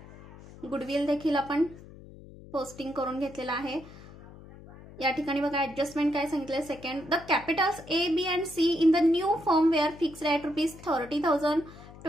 गुडविल देखील आपण पोस्टिंग करून घेतलेलं आहे. या ठिकाणी बघा ऍडजस्टमेंट काय सांगितलंय. Second the capitals A B and C in the new form were fixed at ₹30,000,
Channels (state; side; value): noise; left; hum, 18 dB below the sound